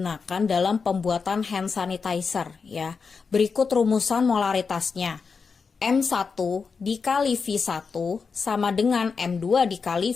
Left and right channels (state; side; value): quieter; right; 5.2 dB